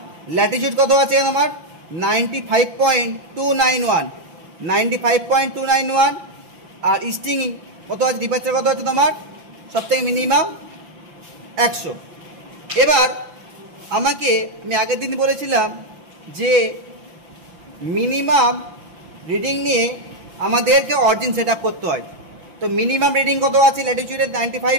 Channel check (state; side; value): late; left; 5.8 ms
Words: ল্যাটিটিউড কত আছে তোমার 95.291, 95.291 আর ইস্টিং কত আছে, ডিপারচার কত আছে তোমার সব থেকে মিনিমাম 100। এবার আমি আগের দিন বলেছিলাম যে মিনিমাম রিডিং নিয়ে আমাদেরকে অরিজিন সেট আপ করতে হয়। তো মিনিমাম রিডিং কত আছে ল্যাটিটিউডের